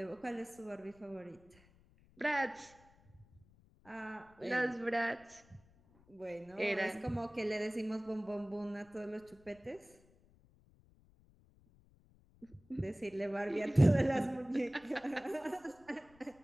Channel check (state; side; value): noise; left; rumble, 28 dB below the sound